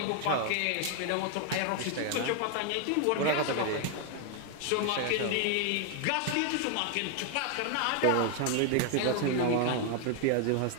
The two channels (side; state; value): both; different; correlation 0.00